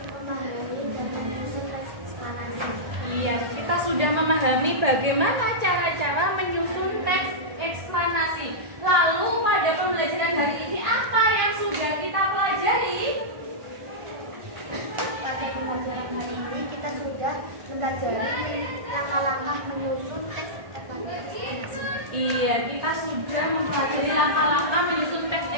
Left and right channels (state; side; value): late; left; 1.4 ms